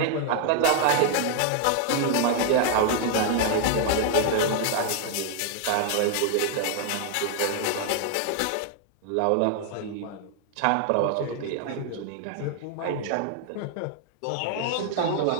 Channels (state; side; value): different; both; correlation 0.00